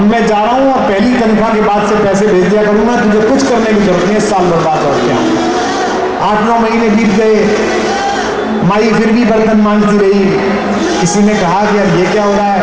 मैं जा रहा हूं और पहली तनख्वाह के बाद से पैसे भेज दिया करूंगा, तुझे कुछ करने की जरूरत नहीं है, साल भर बाद लौट के आऊं। 8-9 महीने बीत गए। माई फिर भी बर्तन मांगती रही। किसी ने कहा कि यार ये क्या हो रहा है?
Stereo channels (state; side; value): identical; both; correlation 1.00